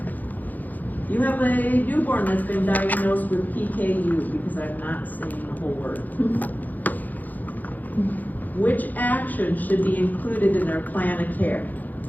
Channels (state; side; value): late; right; 0.083 ms